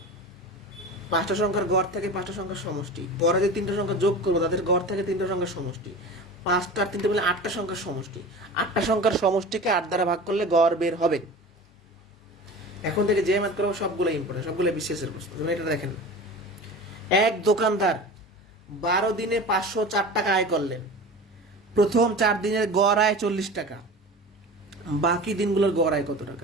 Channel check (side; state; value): both; normal; correlation 0.34